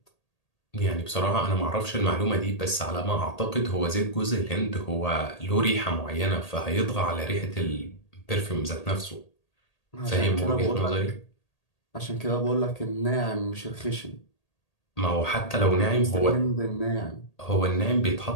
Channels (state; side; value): late; right; 1.8 ms